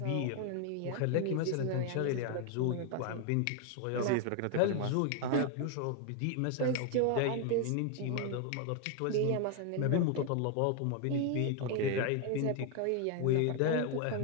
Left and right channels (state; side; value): different; both; correlation 0.00